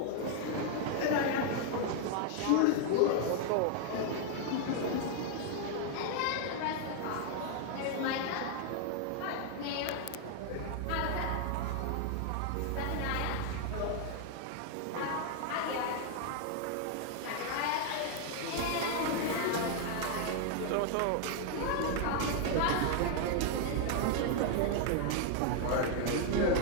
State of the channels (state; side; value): different; both; correlation 0.00